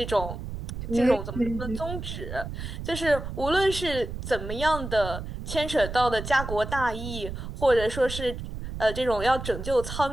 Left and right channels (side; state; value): right; noise; rumble, 7 dB below the sound